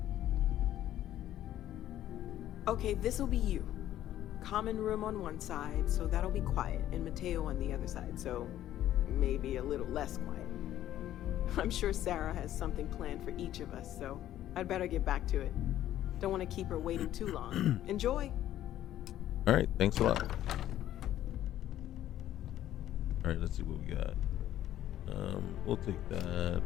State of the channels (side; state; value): right; quieter; 12.5 dB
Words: Okay, this'll be you. Common room on one side, so that'll be quiet, and Mateo on the other side, so maybe a little less quiet. I'm sure Sarah has something planned for each of us, so I'd better get back to it. Don't want to keep her waiting too long. Enjoy. All right, thanks a lot. All right, let's see what we got. We'll take that.